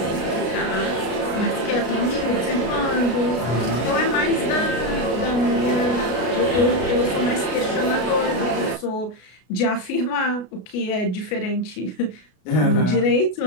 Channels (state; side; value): late; right; 33 ms